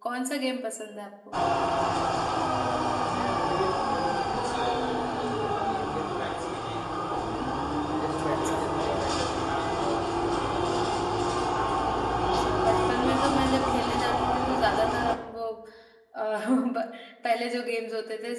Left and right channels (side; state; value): both; identical; correlation 1.00